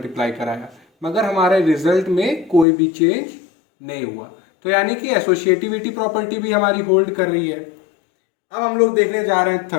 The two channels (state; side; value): drops out; right; at 2.7 s